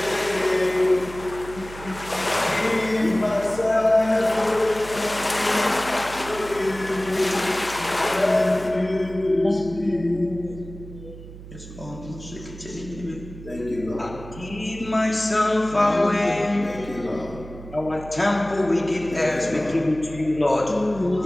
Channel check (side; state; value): right; noise; hum, 15 dB below the sound